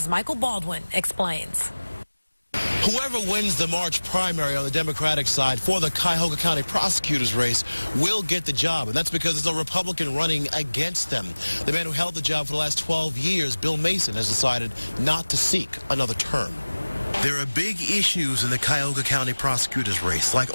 Michael Baldwin explains. Whoever wins the March primary on the Democratic side for the Cuyahoga County prosecutor's race will get the job, and that's because there's a Republican running against them. The man who held the job for the last 12 years, Bill Mason, has decided not to seek another term. There are big issues in the Cuyahoga County prosecutor's race, like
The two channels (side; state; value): both; inverted; correlation -1.00